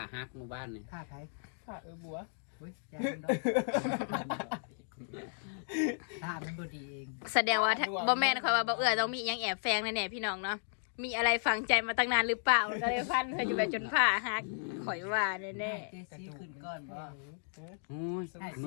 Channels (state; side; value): silent; right; digital silence